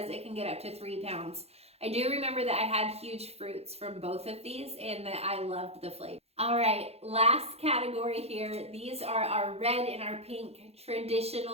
it can get up to 3 pounds. I do remember that I had huge fruits from both of these and that I loved the flavor. All right, last category here. These are our red and our pink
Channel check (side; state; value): left; late; 0.30 ms